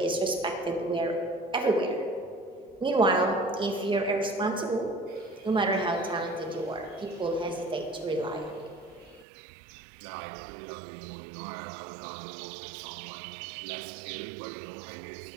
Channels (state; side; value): drops out; left; at 9.2 s